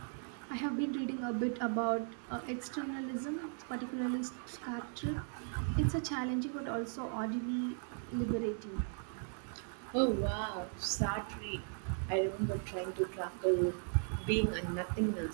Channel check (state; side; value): silent; left; 53 dB below the other